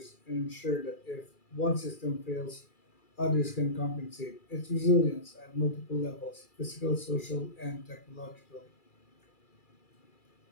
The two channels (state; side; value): late; right; 2.4 ms